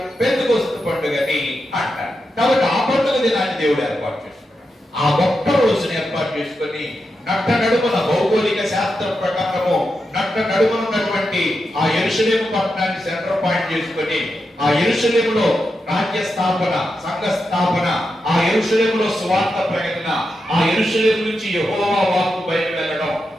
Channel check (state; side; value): normal; both; correlation 0.87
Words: పెంతెకొస్తు పండుగని అంటారు. కాబట్టి ఆ పండుగ దినాన్ని దేవుడు ఏర్పాటు చేసుకున్నాడు. ఆ ఒక్క రోజుని ఏర్పాటు చేసుకొని నట్ట నడుమున భౌగోళిక శాస్త్రం ప్రకారము నట్ట నడుమన ఉన్నటువంటి ఆ యెరూషలేము పట్టణాన్ని సెంటర్ పాయింట్ చేసుకొని ఆ యెరూషలేములో రాజ్య స్థాపన, సంఘ స్థాపన, ఆ యెరూషలేములో సువార్త ప్రకటన, ఆ యెరూషలేము నుంచి యెహోవా వాక్కు బయట వెళ్ళడం,